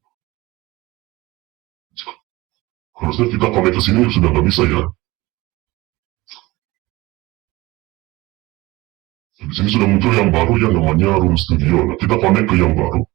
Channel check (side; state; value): left; quieter; 20.5 dB